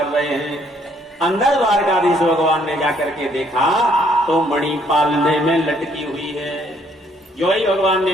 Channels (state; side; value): normal; both; correlation 0.66